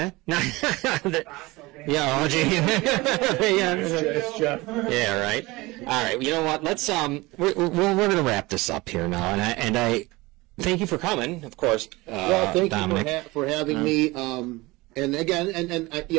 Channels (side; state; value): left; quieter; 21.9 dB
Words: Yeah, right. All right. You know what? Let's we're going to wrap this up here now, and I thank you for coming, of course. Well, thank Dominic. you for having me. And again,